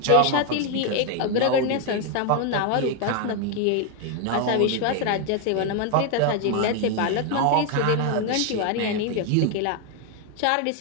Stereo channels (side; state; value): both; different; correlation 0.01